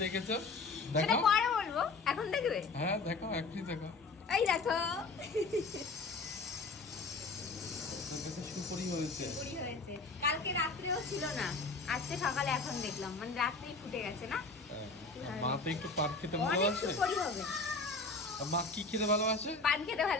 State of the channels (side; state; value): right; quieter; 3.8 dB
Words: দেখেছো? সেটা দেখো। পরে বলবো, এখন দেখবে। হ্যাঁ দেখো, এখনই দেখো। এই দেখো তোর কাছে সুপরি হয়েছে। পুরি হয়েছে। কালকে রাত্রেও ছিল না, আজকে সকালে এখন দেখলাম, মানে রাত্রেই ফুটে গেছে না। হ্যাঁ, মা তো একটু পান খেতে অনেক ভালোবাসে। সুপুরি হবে। আর মা কি খেতে ভালোবাসে? পান খেতে